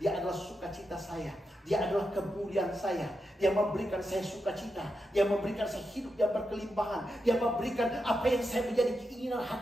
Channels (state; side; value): normal; both; correlation 0.87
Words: adalah sukacita saya. Dia adalah kemuliaan saya. Dia memberikan saya sukacita. Dia memberikan saya hidup yang berkelimpahan. Dia memberikan apa yang saya menjadi keinginan